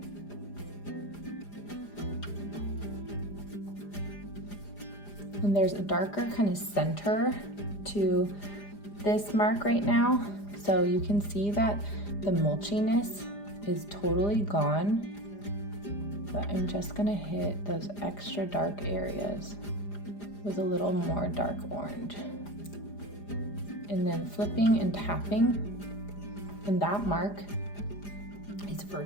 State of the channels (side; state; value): right; late; 4.9 ms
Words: And there's a darker kind of center to this mark right now. So you can see that the mulchiness is totally gone. But I'm just gonna hit those extra dark areas with a little more dark orange. And then flipping and tapping, and that mark is